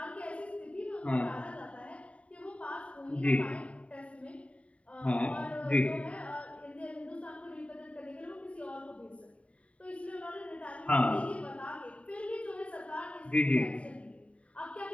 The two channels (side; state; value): right; late; 0.064 ms